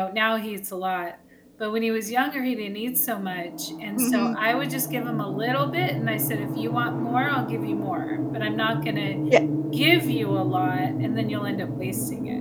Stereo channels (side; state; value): both; identical; correlation 1.00